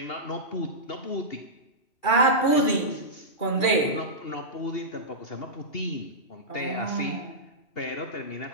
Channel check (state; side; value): late; right; 2.4 ms